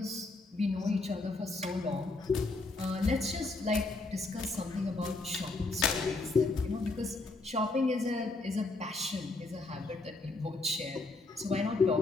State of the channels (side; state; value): right; quieter; 3.3 dB